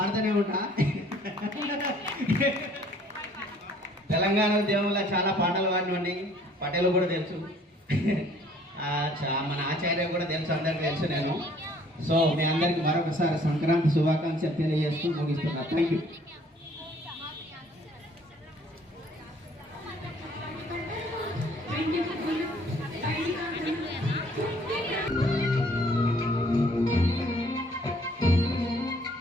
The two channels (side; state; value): both; normal; correlation 0.58